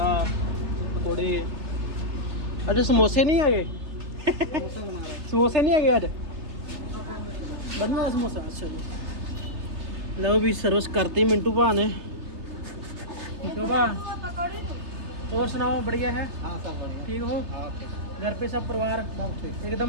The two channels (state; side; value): late; left; 3.3 ms